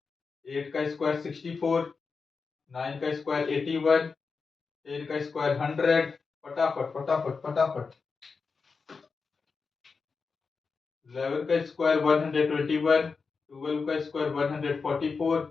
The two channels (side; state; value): right; quieter; 4.9 dB